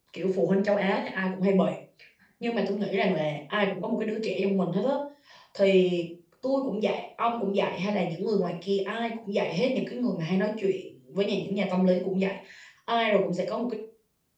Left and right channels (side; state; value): both; identical; correlation 1.00